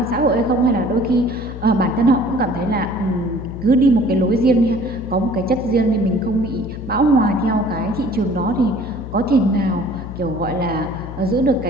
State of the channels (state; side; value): noise; left; hum, 10 dB below the sound